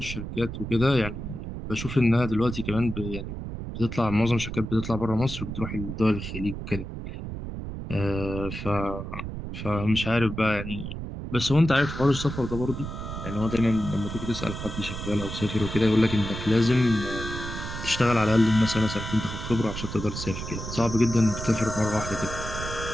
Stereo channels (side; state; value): right; noise; rumble, 7 dB below the sound